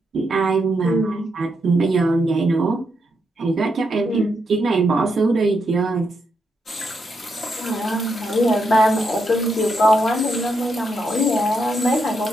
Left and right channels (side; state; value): both; normal; correlation 0.81